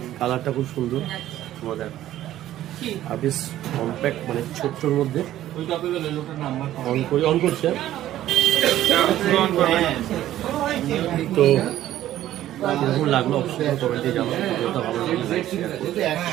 কালারটা খুব সুন্দর মজার আর বেশ কম্প্যাক্ট, মানে ছোট্টর মধ্যে অন করছে তো কিরকম লাগলো অবশ্যই কমেন্টে জানাবো। ভালো লাগলে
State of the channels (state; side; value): quieter; left; 13.2 dB